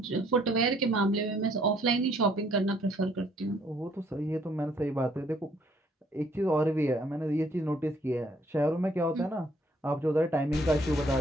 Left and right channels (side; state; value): both; normal; correlation 0.64